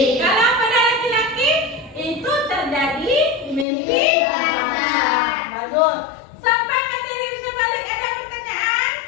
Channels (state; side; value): drops out; right; at 3.7 s